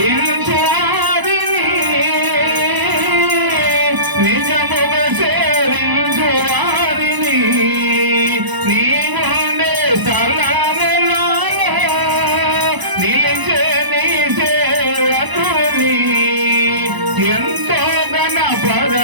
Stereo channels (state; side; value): late; left; 1.0 ms